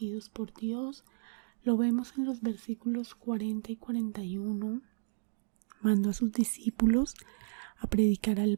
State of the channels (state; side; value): silent; left; digital silence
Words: por Dios. Lo vemos en los versículos 40 y 41. Mandó a sus discípulos a predicar al